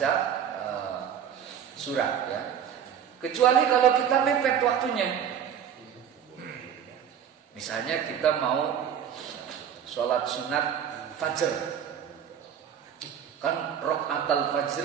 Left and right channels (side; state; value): left; quieter; 8.8 dB